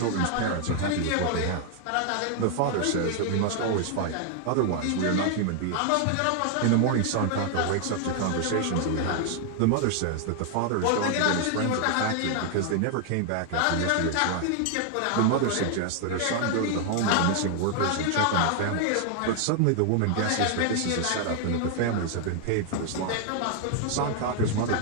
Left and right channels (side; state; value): both; different; correlation 0.00